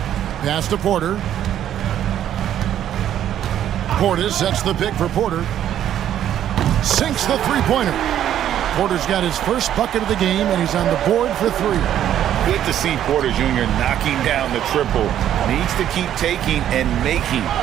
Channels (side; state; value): left; quieter; 10.9 dB